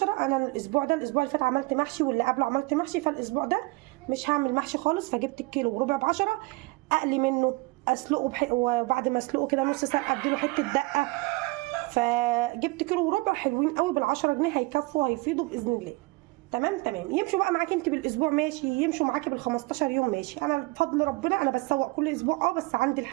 انا الاسبوع اللي فات عملت محشي، واللي قبله عملت محشي، فالاسبوع ده مش هعمل محشي خالص. فجبت الكيلو وربع ب10. اقلي منه، اسلقه وبعد ما اسلقه كده نص ساعه اديله حته دقه. فجبت كيلو وربع حلوين قوي بال10 جنيه، هيكفوا هيفيدوا باذن الله. تمام. يمشوا بقى معاكي انت بالاسبوع ماشي، يمشوا معاكي بال15 يوم ماشي. انا بفضل ربنا انا بسوق كل اسبوع، بس عندي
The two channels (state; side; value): quieter; left; 24.0 dB